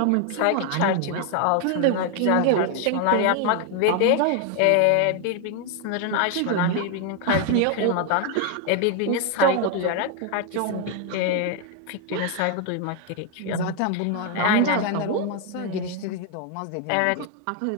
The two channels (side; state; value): both; different; correlation 0.00